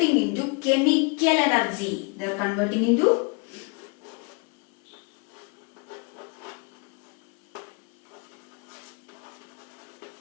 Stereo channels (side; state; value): right; quieter; 31.5 dB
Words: into chemical energy. They are converting into